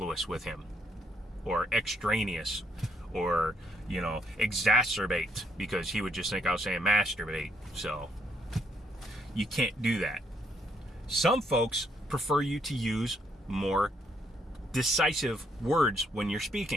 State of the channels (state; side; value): normal; both; correlation 0.72